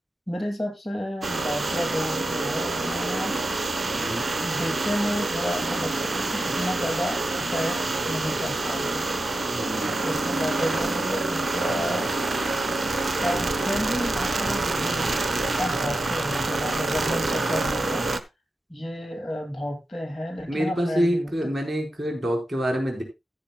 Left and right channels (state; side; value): normal; both; correlation 0.90